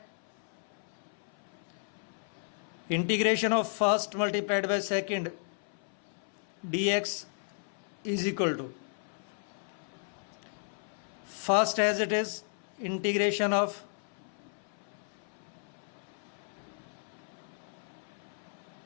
Integration of first multiplied by second dx is equal to first as it is integration of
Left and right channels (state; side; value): silent; right; 55 dB below the other